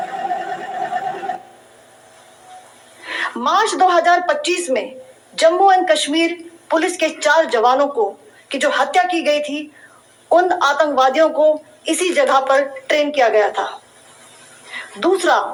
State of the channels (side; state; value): both; identical; correlation 1.00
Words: मार्च 2025 में जम्मू एंड कश्मीर पुलिस के 4 जवानों को की जो हत्या की गई थी, उन आतंकवादियों को इसी जगह पर ट्रेन किया गया था। दूसरा,